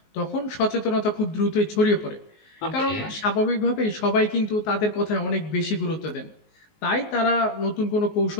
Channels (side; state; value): right; late; 19 ms